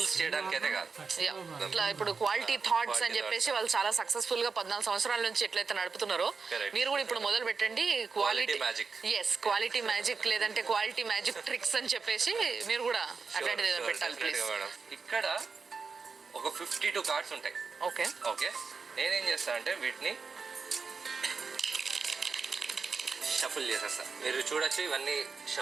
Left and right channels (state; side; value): quieter; left; 4.9 dB